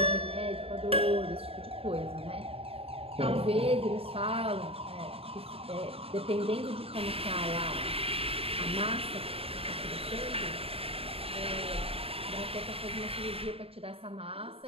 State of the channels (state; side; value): late; left; 0.28 ms